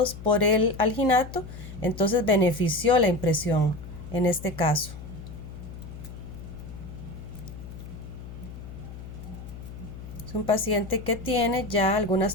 por el alginato, entonces benefició la impresión en este caso. Es un paciente que tiene ya algunas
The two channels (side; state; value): left; noise; hum, 12 dB below the sound